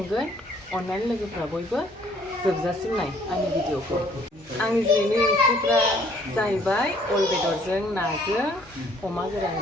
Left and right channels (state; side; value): normal; both; correlation 0.61